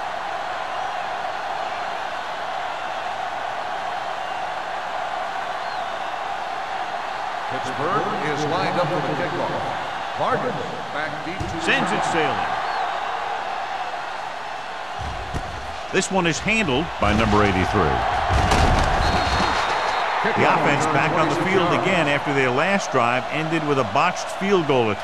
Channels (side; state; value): both; identical; correlation 1.00